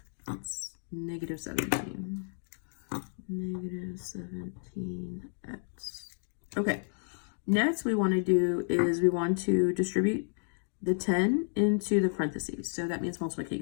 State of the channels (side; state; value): right; silent; digital silence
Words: That's negative 17. Negative 17x. Okay. Next we want to do is we want to distribute the 10 into the parentheses. So that means